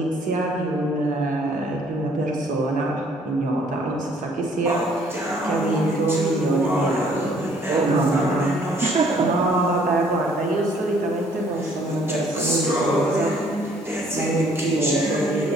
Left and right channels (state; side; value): normal; both; correlation 0.61